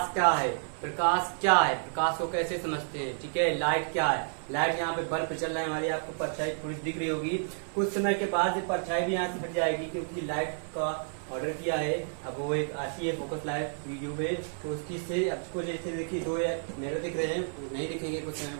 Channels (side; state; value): left; silent; 57 dB below the other